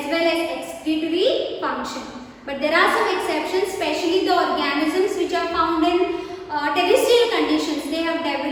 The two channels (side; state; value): both; identical; correlation 1.00